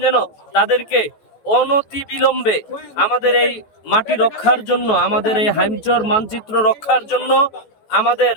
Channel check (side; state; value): right; late; 14 ms